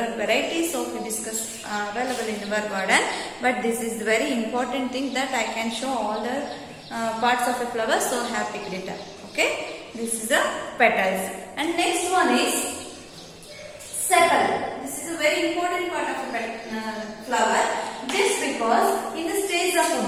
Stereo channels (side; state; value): both; identical; correlation 1.00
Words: varieties of hibiscus available in our garden, but this is the very important thing that I can show all the parts of a flower, so I have picked it up. Okay, this is the petals. And next one is sepal. This is a very important part of a flower, just because in the stage of